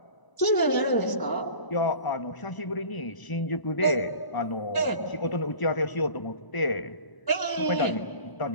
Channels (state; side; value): late; right; 1.0 ms